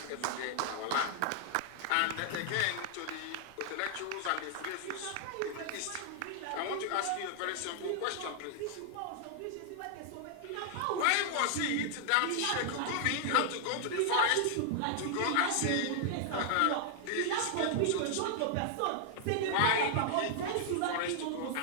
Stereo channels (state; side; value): different; both; correlation 0.00